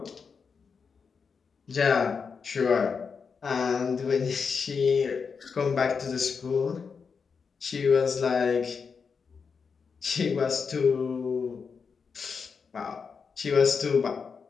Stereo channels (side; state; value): right; quieter; 5.7 dB